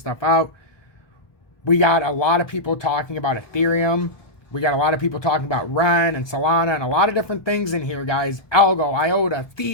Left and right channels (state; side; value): late; right; 1.2 ms